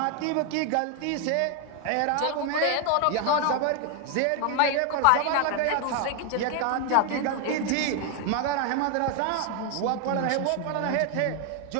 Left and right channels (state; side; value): different; both; correlation 0.01